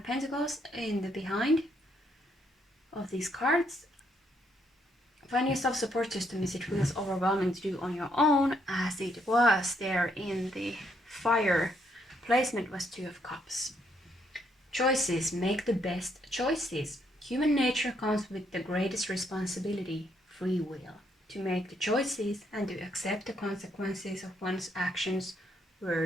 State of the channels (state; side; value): normal; both; correlation 0.73